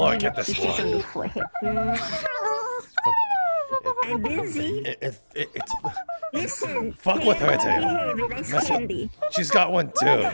get this kisses on one. the forehead. I'm busy. It's. Listen. Fuck with her, Taylor. Nice candy. She's got one too.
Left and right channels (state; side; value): inverted; both; correlation -1.00